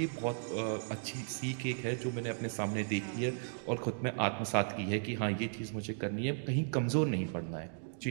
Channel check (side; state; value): left; silent; digital silence